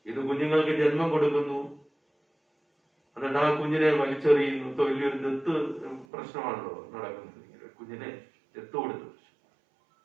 ഇത് കുഞ്ഞുങ്ങൾക്ക് ജന്മം കൊടുക്കുന്നു, എന്നിട്ട് ആ കുഞ്ഞിനെ വലിച്ചെറിയുന്നു. വലിയൊരു ദത്ത് പ്രശ്നമാണല്ലോ നടക്കുന്നത്. കുഞ്ഞിനെ ദത്ത് കൊടുത്തു.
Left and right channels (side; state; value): left; drops out; at 6.1 s